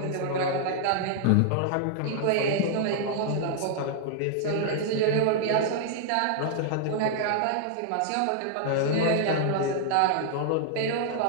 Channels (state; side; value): different; both; correlation -0.01